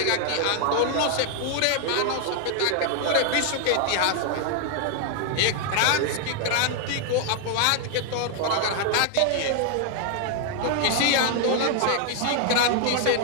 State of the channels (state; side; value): different; both; correlation 0.00